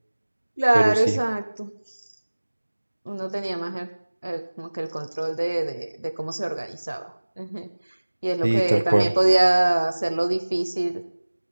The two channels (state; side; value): inverted; both; correlation -1.00